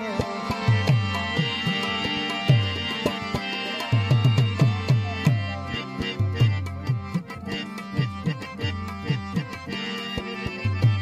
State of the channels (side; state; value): both; identical; correlation 1.00